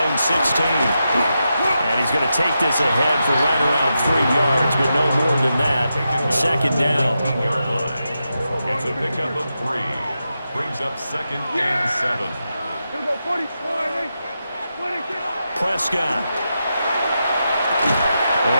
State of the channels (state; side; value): inverted; both; correlation -0.87